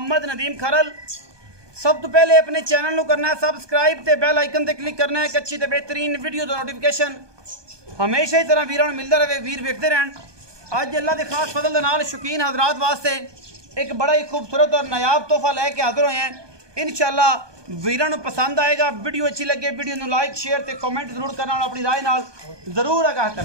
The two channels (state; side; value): late; left; 1.2 ms